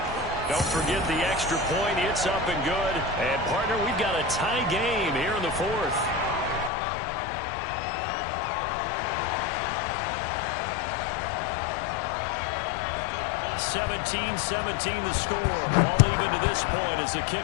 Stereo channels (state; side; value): drops out; right; at 6.7 s